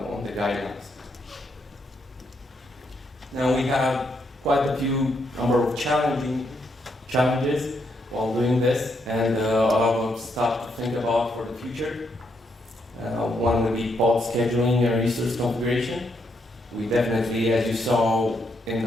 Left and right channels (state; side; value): normal; both; correlation 0.77